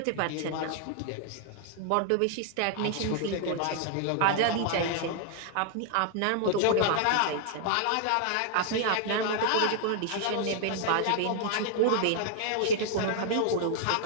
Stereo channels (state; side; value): different; both; correlation 0.00